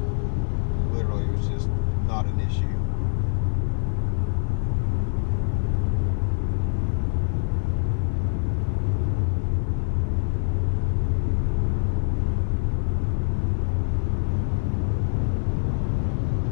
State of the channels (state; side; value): silent; right; 62 dB below the other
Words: literally it was just not an issue.